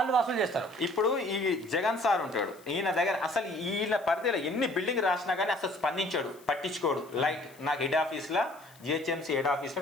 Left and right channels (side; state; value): left; noise; hiss, 26 dB below the sound